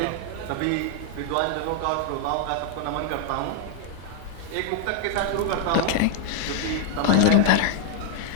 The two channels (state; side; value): different; both; correlation 0.00